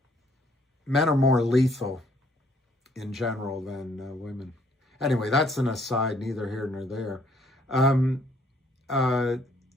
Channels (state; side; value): normal; both; correlation 0.64